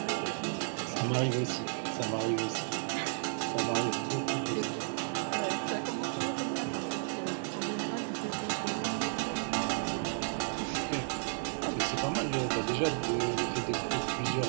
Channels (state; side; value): silent; left; digital silence